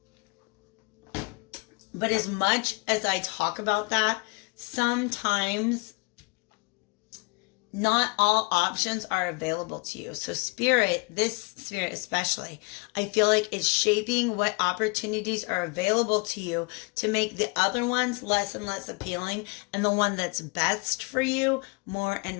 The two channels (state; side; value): quieter; right; 29.3 dB